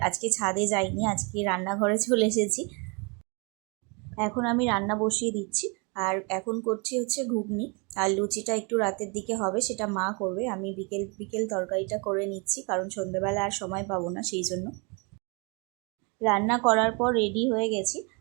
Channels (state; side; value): quieter; left; 32.3 dB